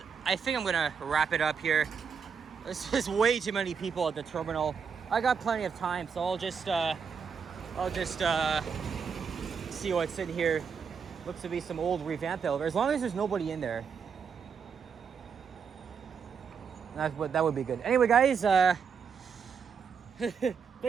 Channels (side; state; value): left; quieter; 6.4 dB